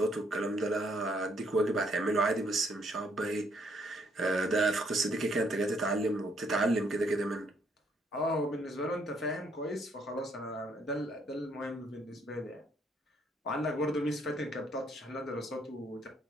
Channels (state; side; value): normal; both; correlation 0.69